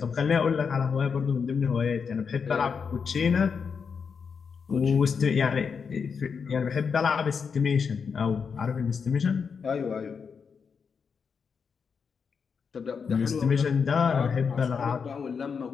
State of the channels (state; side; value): quieter; right; 6.0 dB